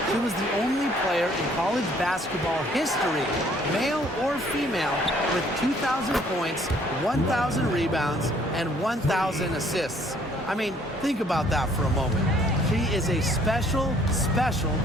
She was the only player in college basketball history, male or female, with 2,000 points, 1,000 rebounds, and 1,000 assists. I mean, think about that for a moment. She is a special, special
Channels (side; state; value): both; normal; correlation 0.61